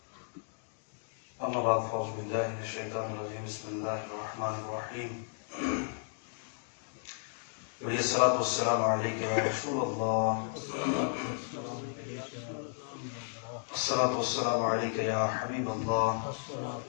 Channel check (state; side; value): silent; right; digital silence